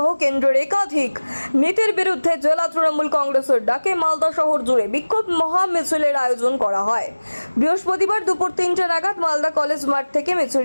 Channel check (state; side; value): inverted; both; correlation -1.00